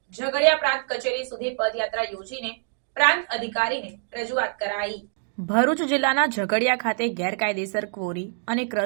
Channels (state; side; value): silent; left; digital silence